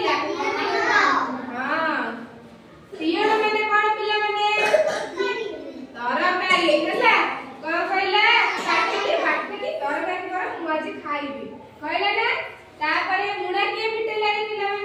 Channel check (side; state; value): both; identical; correlation 1.00